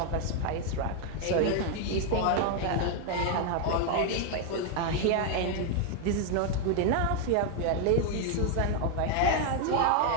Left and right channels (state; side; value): different; both; correlation 0.00